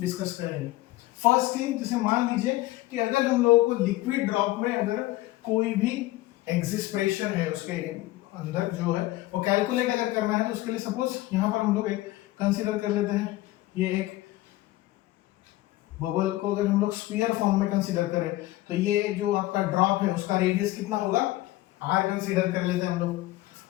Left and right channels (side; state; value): right; quieter; 17.5 dB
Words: करेंगे। फर्स्ट थिंग, जैसे मान लीजिए कि अगर हम लोगों को लिक्विड ड्रॉप में अगर कोई भी एग्जिस्ट प्रेशर है उसके अंदर जो है वो कैलकुलेट अगर करना है, तो उसके लिए सपोज यहां पर हम लोग एक कंसीडर कर लेते हैं, ये एक बबल को अगर हम लोग स्फीयर फॉर्म में कंसीडर करें तो ये जो आपका ड्रॉप है उसका रेडियस कितना होगा, आर कंसीडर कर लेते हैं हम लोग।